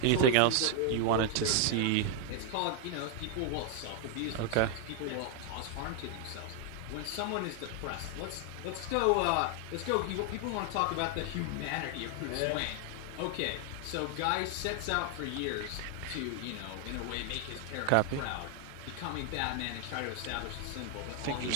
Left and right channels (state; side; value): different; both; correlation 0.00